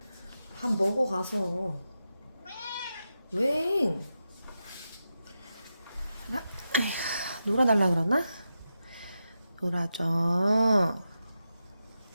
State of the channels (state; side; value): inverted; both; correlation -0.89